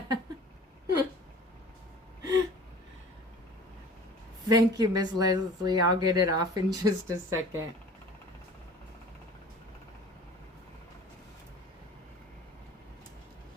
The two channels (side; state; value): both; normal; correlation 0.44